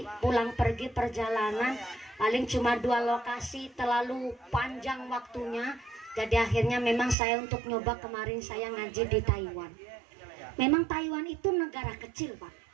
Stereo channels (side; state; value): left; drops out; at 7.2 s